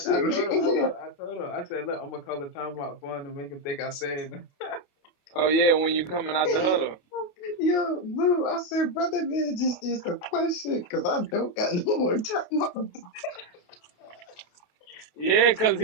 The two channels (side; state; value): right; late; 28 ms